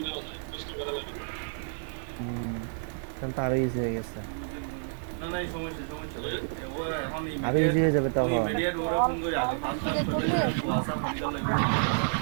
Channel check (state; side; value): silent; left; digital silence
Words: নেওয়া যায়, কষ্ট করা লাগে না। তাহলে তো আরো ইজি হয়ে গেছে, না না এই সমস্যা সমস্যা হ্যাঁ? ও এখন আরো ইজি হয়ে যাবে তখন। ইমিডিয়েট ওরা ফোন করে আগে অনলাইন পাঁচ থেকে করলে